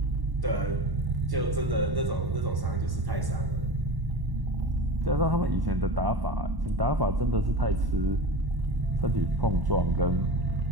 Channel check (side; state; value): left; late; 1.1 ms